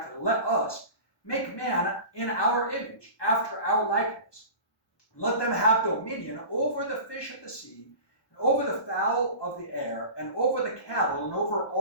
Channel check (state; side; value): late; right; 1.2 ms